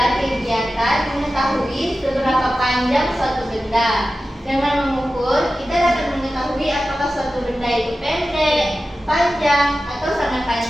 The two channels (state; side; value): normal; both; correlation 0.94